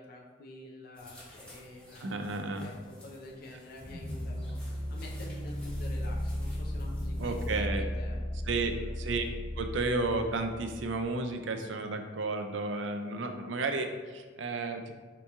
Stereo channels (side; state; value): both; normal; correlation 0.41